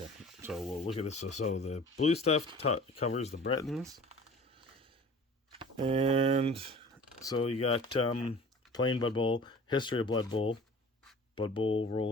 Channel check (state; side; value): normal; both; correlation 0.43